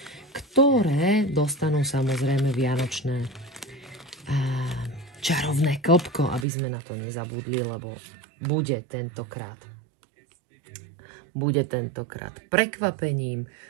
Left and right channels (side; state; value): left; drops out; at 6.5 s